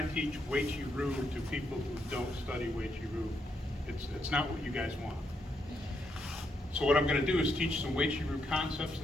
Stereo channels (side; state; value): both; normal; correlation 0.79